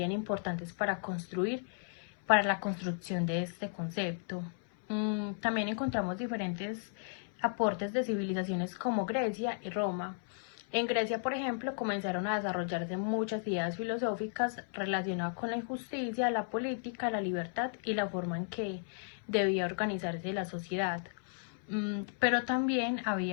importantes para la construcción de este concepto. También encontramos diferentes aportes de civilizaciones como Grecia y Roma. En Grecia, por ejemplo, comenzaron a desarrollarse muchas ideas filosóficas relacionadas con la injusticia, la política, la libertad y la forma en que debía organizarse la sociedad. Pero también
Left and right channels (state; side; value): silent; right; 55 dB below the other